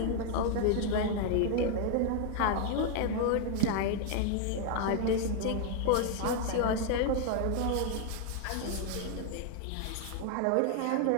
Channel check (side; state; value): both; different; correlation 0.00